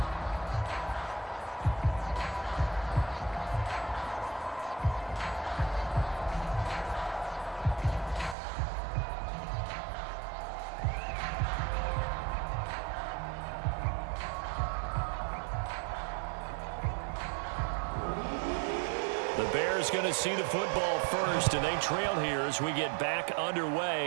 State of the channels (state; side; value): drops out; left; at 8.3 s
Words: The Bears going to see the football first, and they trail here as we get back